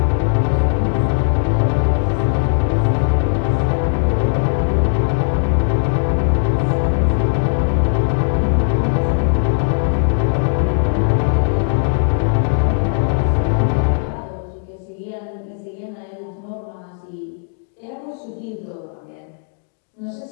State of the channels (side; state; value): right; silent; digital silence